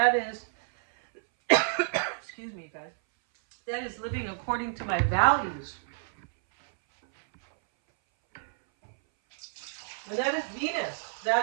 is, excuse me, guys, that is living according to my values. And that is Venus.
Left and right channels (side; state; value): left; silent; 59 dB below the other